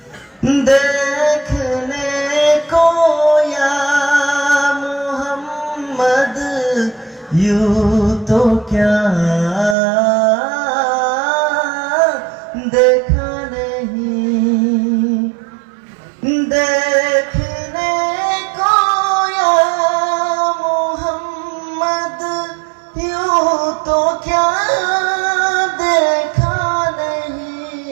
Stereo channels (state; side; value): drops out; left; at 9.8 s